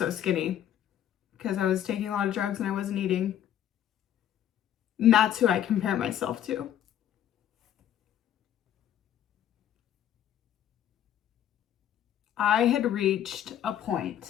skinny, because I was taking a lot of drugs and I wasn't eating. And that's who I compare myself to. I had reached a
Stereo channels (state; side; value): quieter; right; 10.7 dB